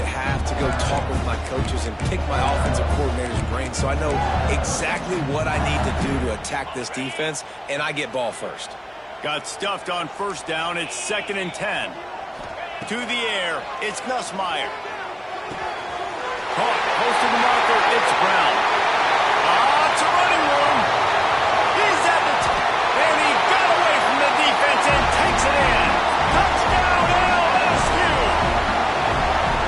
half to go talk with my coaches and pick my offensive coordinator's brain so I know exactly what I need to do to attack this defense, and I get ball first. Got stuffed on first down. It's 2nd and 10. To the air, it's Nussmeier. Caught, close to the marker, it's Brown. It's a running one. He's at the and he got away from the defense and takes it in. Touchdown, LSU!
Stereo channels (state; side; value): identical; both; correlation 1.00